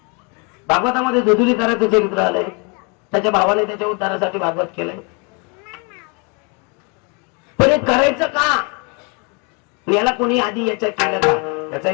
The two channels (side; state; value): right; quieter; 33.3 dB